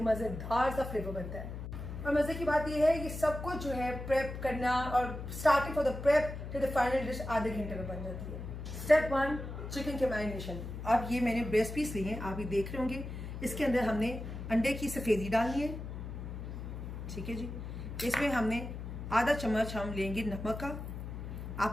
मजेदार सा फ्लेवर बनता है। और मजे की बात ये है, ये सब कुछ जो है प्रेप करना, और starting for the prep to the final dish आधे घंटे में बन जाती है। स्टेप 1, चिकन के मैरिनेशन। अब ये मैंने ब्रेस्ट पीस लिए हैं, आप ये देख रहे होंगे। इसके अंदर हमने अंडे की सफेदी डालनी है, ठीक है जी। इसमें हमने आधा चम्मच हम लेंगे नमक का, आप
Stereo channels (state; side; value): noise; left; hum, 8 dB below the sound